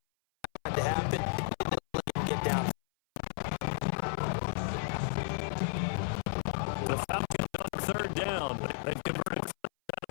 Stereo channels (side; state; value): right; silent; 56 dB below the other